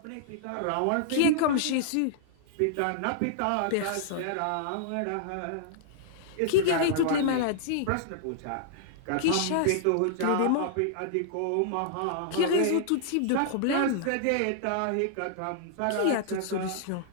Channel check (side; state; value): both; different; correlation -0.01